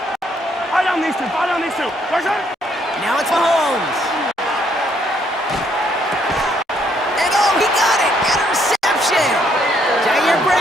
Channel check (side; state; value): both; normal; correlation 0.70